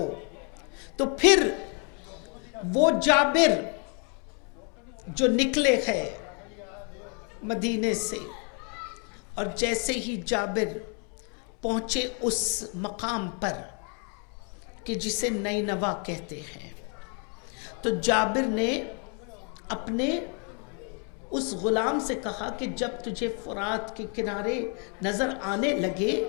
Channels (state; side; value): quieter; right; 38.3 dB